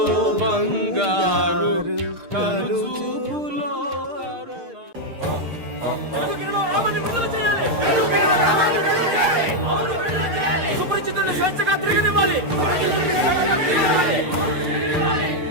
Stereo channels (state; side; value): late; left; 6.5 ms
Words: బంగారు కలుచుపులో సుపరిచితుల్ని స్వేచ్ఛగా తిరగనివ్వాలి.